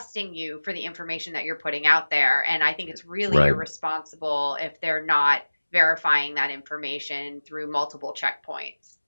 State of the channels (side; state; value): both; inverted; correlation -1.00